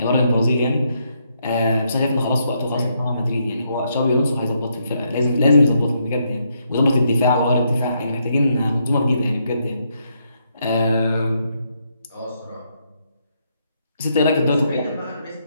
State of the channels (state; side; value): inverted; both; correlation -0.76